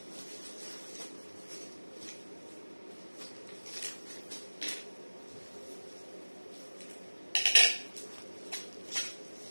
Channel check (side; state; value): both; inverted; correlation -1.00